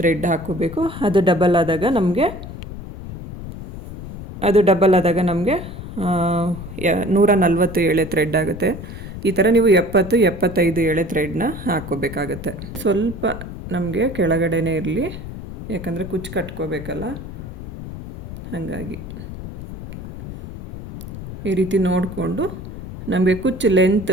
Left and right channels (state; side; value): noise; left; rumble, 11 dB below the sound